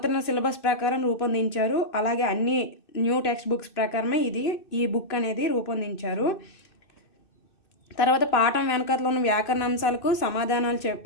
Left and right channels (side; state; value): right; late; 2.6 ms